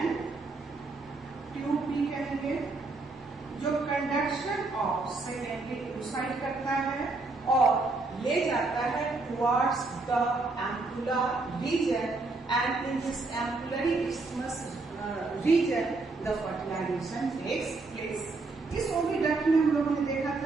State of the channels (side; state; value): left; quieter; 3.5 dB